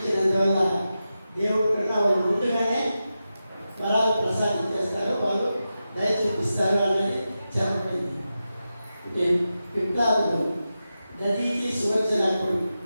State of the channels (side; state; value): both; inverted; correlation -0.91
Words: దేవుడి కన్నా వాళ్ళు ముందుగానే వరాలు ప్రసాదించేస్తారు, వాళ్ళు దయ చూపిస్తారు అన్నది చెప్పబడింది. అంటే విప్లవాలు దధీచి సువచ్చనాకుడు,